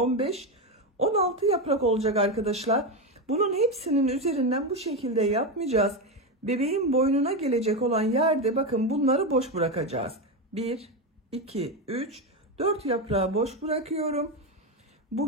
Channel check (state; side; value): normal; both; correlation 0.12